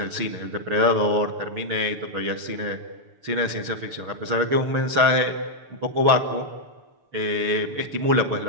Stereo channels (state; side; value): late; left; 6.9 ms